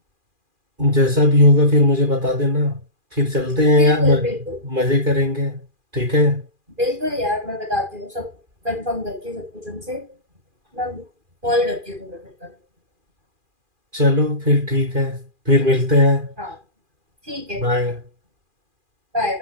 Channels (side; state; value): left; late; 2.4 ms